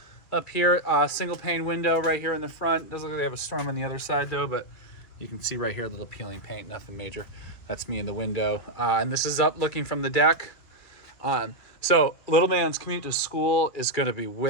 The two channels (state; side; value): late; right; 2.6 ms